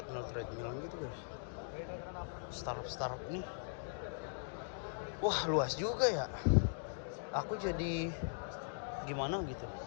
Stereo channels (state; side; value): silent; right; digital silence